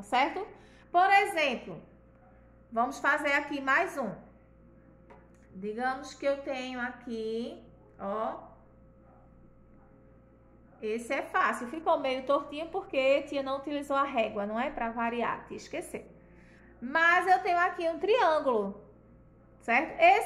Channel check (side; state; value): both; identical; correlation 1.00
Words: certo? Por exemplo, vamos fazer aqui mais um. Digamos que eu tenho aqui, ó, esse é fácil, ficou meio tortinho porque tia não utilizou a régua, não é? Para variar, tia esqueceu. Mas eu tenho aqui um triângulo, certo?